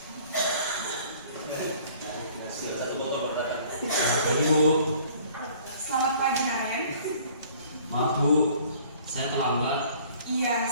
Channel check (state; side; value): inverted; both; correlation -0.54